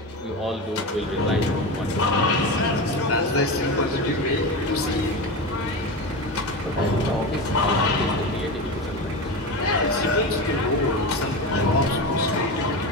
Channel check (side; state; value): both; normal; correlation 0.22